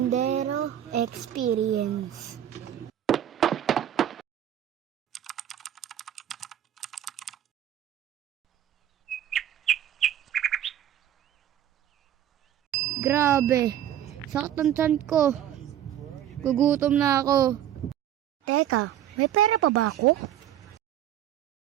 Experience. Grabe, sakit ng tiyan ko. Gugutom na ako. Teka, may pera pa ba ako?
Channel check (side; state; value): left; quieter; 11.1 dB